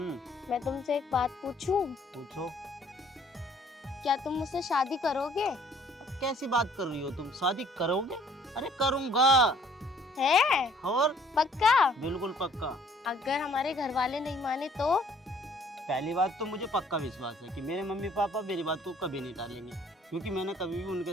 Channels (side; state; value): both; normal; correlation 0.59